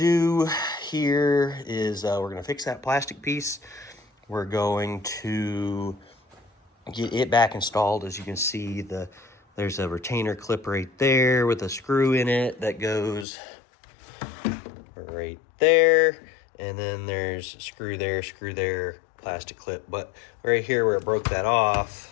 here is we're gonna fix that plastic piece. We're going to get it back installed. As you can see, there's a retainer clip right there with a screw in it that goes right there. And then there's screw there, plastic clip. But right here where it broke that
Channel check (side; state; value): right; drops out; at 13.2 s